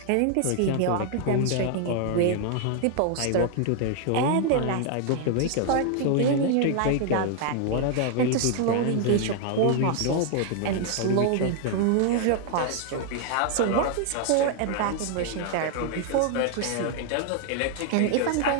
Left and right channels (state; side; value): different; both; correlation 0.00